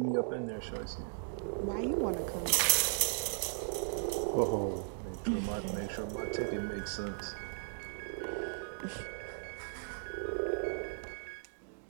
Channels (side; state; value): left; silent; digital silence